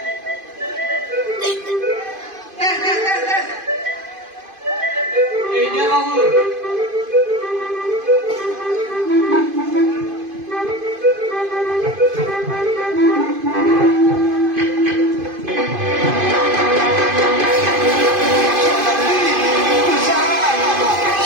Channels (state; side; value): late; left; 2.5 ms